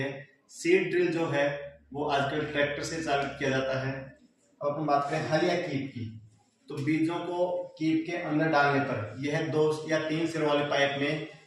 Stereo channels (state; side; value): identical; both; correlation 1.00